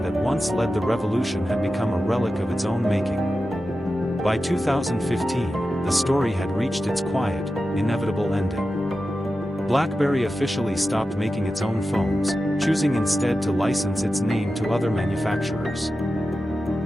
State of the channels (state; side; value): normal; both; correlation 0.92